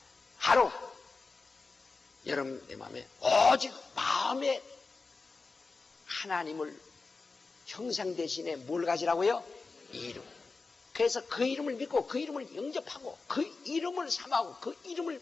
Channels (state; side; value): quieter; right; 4.1 dB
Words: 바로 여러분 내 마음에 오직 마음에 하나님을 형상 대신에 뭘 가지라고요? 이름. 그래서 그 이름을 믿고 그 이름을 영접하고 그 이름을 삼하고 그 이름을